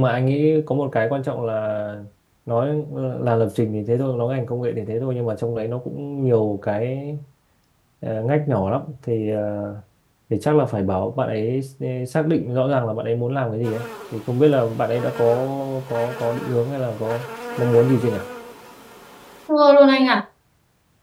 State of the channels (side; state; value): both; identical; correlation 1.00